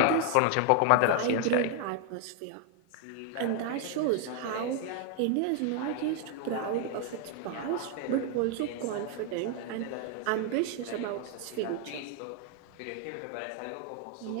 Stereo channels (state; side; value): different; both; correlation 0.00